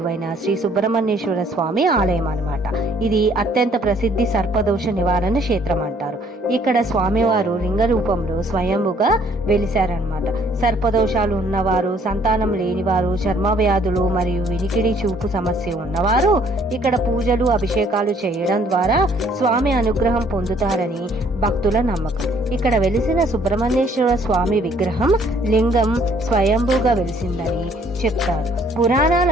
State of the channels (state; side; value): normal; both; correlation 0.61